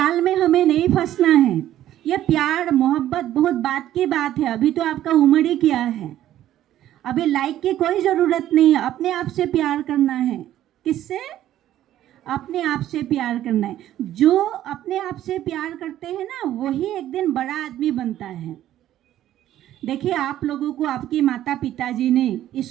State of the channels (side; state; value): left; quieter; 12.6 dB